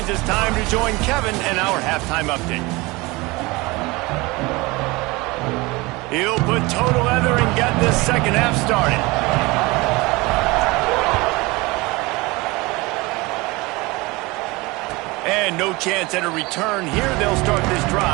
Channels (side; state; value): left; quieter; 23.3 dB